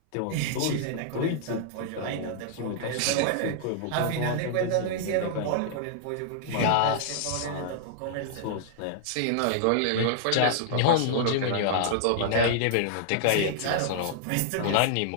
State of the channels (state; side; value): different; both; correlation -0.01